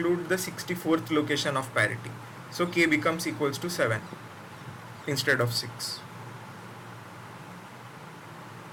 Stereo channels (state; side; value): identical; both; correlation 1.00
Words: the 64th location of parity. So k becomes equals to 7 instead of 6.